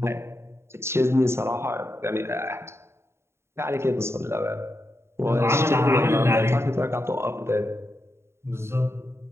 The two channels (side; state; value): left; late; 0.13 ms